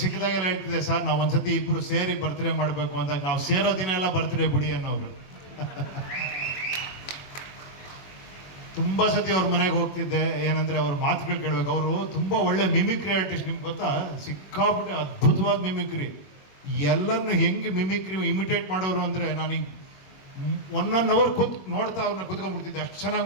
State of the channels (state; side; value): late; right; 21 ms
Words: ಸಿಕ್ಕಿದಾಗೆಲ್ಲ ಹೇಳ್ತಿದ್ದೆ, ಸರ್ ನಾವು ಒಂದ್ಸತಿ ಇಬ್ಬರು ಸೇರಿ ಬರ್ತ್ಡೇ ಮಾಡಬೇಕು ಅಂದಾಗ, ನಾವು ಸೇರೋ ದಿನ ಎಲ್ಲ ಬರ್ತ್ಡೇ ಬಿಡಿ ಅನ್ನೋರು. ತುಂಬ ಸತಿ ಅವ್ರ ಮನೆಗೆ ಹೋಗ್ತಿದ್ದೆ. ಏನಂದರೆ ಅವ್ರ ಮಾತುಗಳು ಕೇಳಬೇಕು. ಅವರು ತುಂಬ ಒಳ್ಳೆ ಮಿಮಿಕ್ರಿ ಆರ್ಟಿಸ್ಟ್, ನಿಮ್ಗೆ ಗೊತ್ತಾ? ಸಿಕ್ಕಾಬಿಟ್ಟೆ ಅದ್ಭುತವಾದ ಮಿಮಿಕ್ರಿ. ಎಲ್ಲರನ್ನು ಹೆಂಗೆ ಮಿಮಿಕ್ರಿ ಇಮಿಟೇಟ್ ಮಾಡೋರು ಅಂದರೆ, ನಾನೀಗ 1 hour ನೋಡ್ತಾ ಅವ್ರನ್ನ ಕೂತ್ಕೊಂಡ್ಬಿಡ್ತಿದ್ದೆ, ಅಷ್ಟು ಚೆನ್ನಾಗಿ